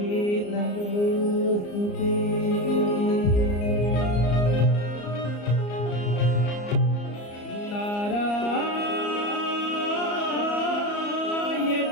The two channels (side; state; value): right; late; 34 ms